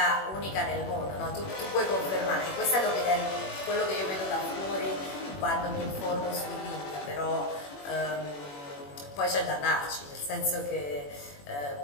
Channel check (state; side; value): late; right; 21 ms